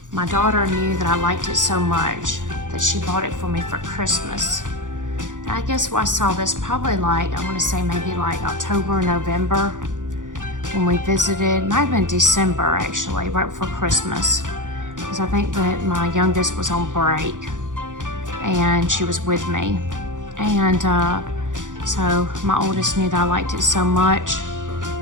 my daughter knew that I liked it so much that she bought it for me for Christmas. And I guess I saw this probably like, I want to say maybe like October or November when we visited. Might have been December actually, right before Christmas. Because I think that my youngest was on break and she was with me. And so my oldest knew that I liked it so much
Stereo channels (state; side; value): late; left; 0.87 ms